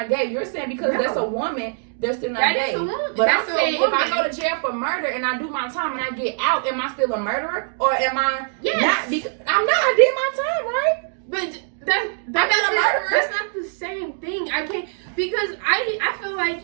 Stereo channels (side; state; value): left; silent; 64 dB below the other